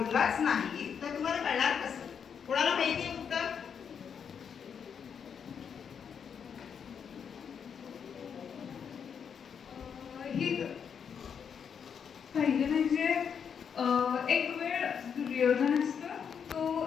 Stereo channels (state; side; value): quieter; right; 7.2 dB